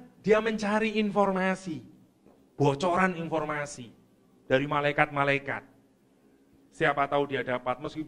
dia mencari informasi, bocoran informasi dari malaikat-malaikat. Siapa tahu dia dapat,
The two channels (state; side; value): identical; both; correlation 1.00